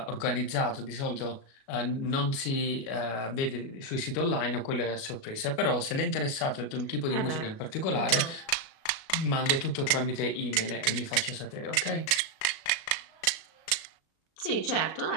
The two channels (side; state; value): right; late; 36 ms